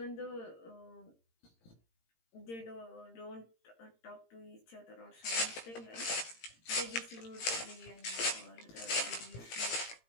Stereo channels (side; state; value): right; late; 18 ms